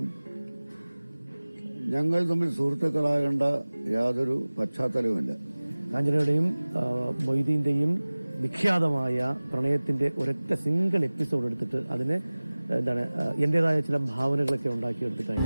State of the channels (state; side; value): inverted; both; correlation -0.99